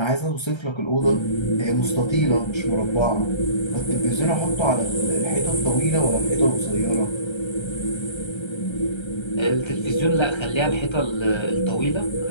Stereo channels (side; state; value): right; late; 1.3 ms